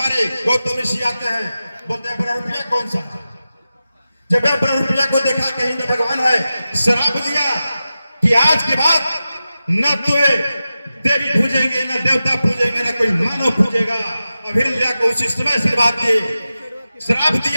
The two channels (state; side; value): inverted; both; correlation -0.93